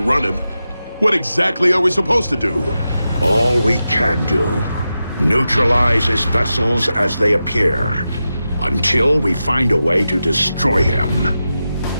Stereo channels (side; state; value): both; inverted; correlation -0.91